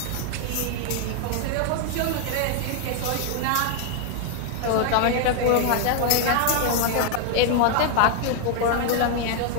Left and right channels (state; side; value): different; both; correlation 0.00